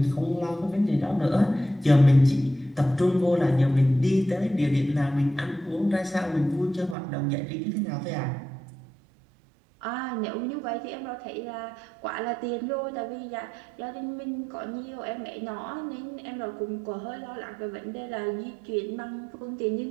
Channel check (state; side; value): drops out; left; at 7.0 s